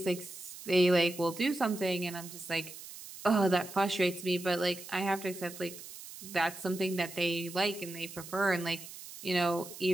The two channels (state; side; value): noise; right; hiss, 14 dB below the sound